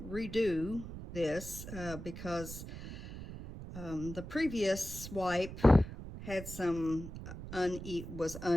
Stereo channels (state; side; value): noise; right; rumble, 10 dB below the sound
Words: redo this because the previous swipe had some was